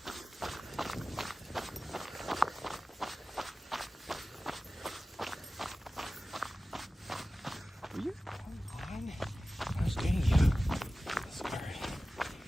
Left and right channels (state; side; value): normal; both; correlation 0.96